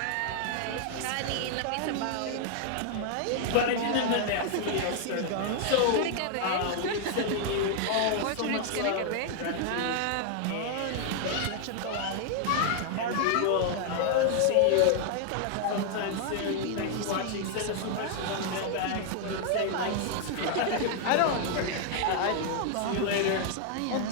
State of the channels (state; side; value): different; both; correlation 0.00